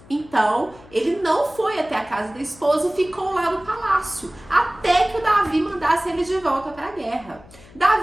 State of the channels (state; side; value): noise; left; hum, 23 dB below the sound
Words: Então, ele não foi até a casa da esposa e ficou lá no palácio, até que o Davi mandasse ele de volta para a guerra.